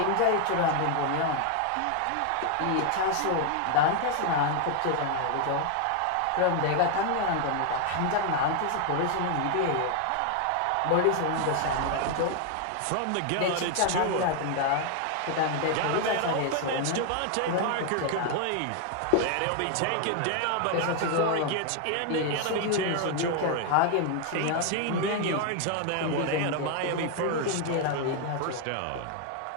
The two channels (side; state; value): both; different; correlation 0.00